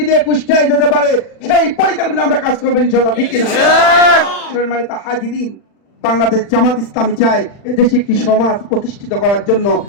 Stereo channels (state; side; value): late; right; 40 ms